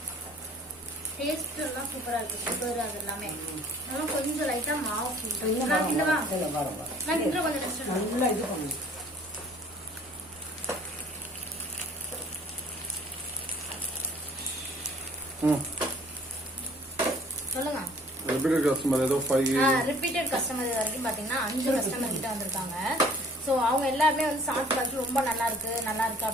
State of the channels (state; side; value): normal; both; correlation 0.54